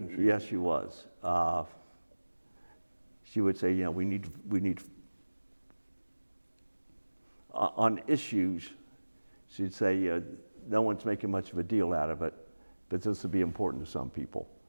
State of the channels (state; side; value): inverted; both; correlation -1.00